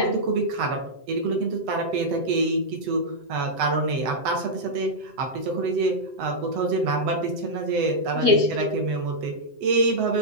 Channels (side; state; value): left; late; 7.8 ms